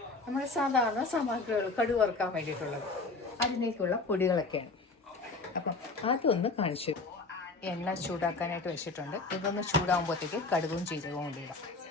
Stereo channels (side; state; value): right; quieter; 3.6 dB